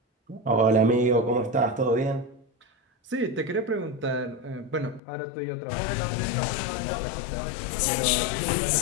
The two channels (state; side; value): drops out; right; at 5.0 s